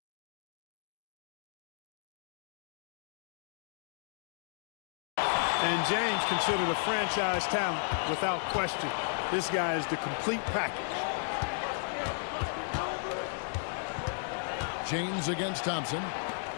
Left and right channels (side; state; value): right; silent; digital silence